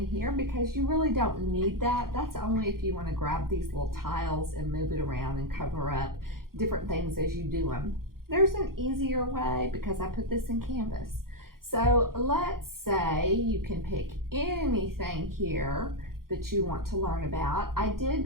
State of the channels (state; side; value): late; left; 0.92 ms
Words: here because you really don't need that. That's only if you want to grab these little tiles and move it around and cover up different things as you do them. There's an easier way because I put this in Canvas. So let's say you can pick anything here that you want to learn about. I